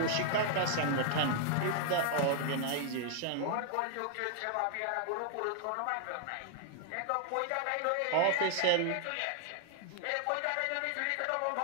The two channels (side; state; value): both; different; correlation -0.01